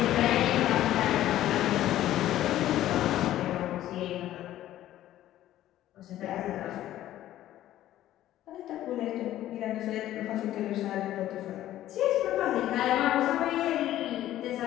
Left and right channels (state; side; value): quieter; right; 13.4 dB